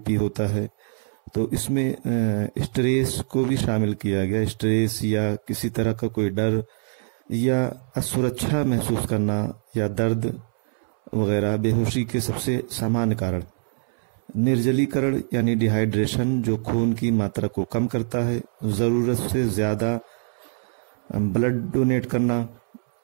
होता है। तो इसमें स्ट्रेस को भी शामिल किया गया। स्ट्रेस या किसी तरह का कोई डर या असुरक्षा महसूस करना या दर्द वगैरह बेहोशी के सबसे सामान्य कारण। निर्जलीकरण यानी डिहाइड्रेशन जो खून की मात्रा को कम करता है। ज़रूरत से ज़्यादा ब्लड डोनेट करना।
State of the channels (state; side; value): silent; left; 62 dB below the other